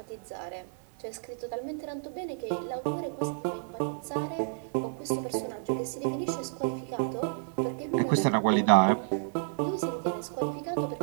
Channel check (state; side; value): silent; left; digital silence